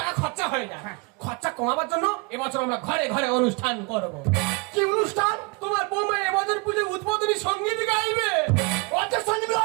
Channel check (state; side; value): quieter; left; 29.3 dB